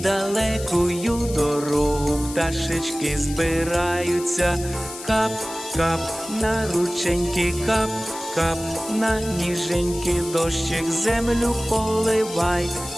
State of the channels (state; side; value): noise; left; hiss, 13 dB below the sound